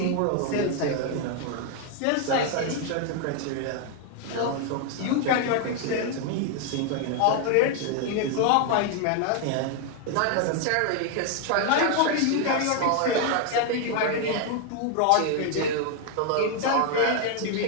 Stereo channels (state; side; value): different; both; correlation 0.01